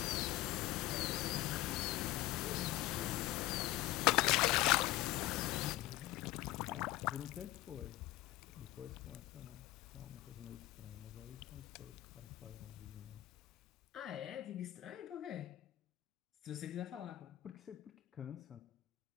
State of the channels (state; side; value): quieter; right; 16.9 dB